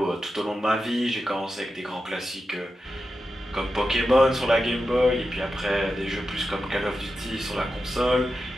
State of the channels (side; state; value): both; normal; correlation 0.90